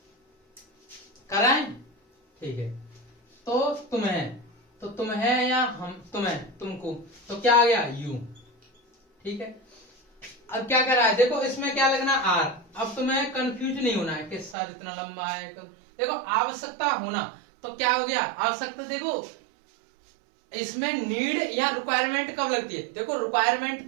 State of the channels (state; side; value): drops out; left; at 14.6 s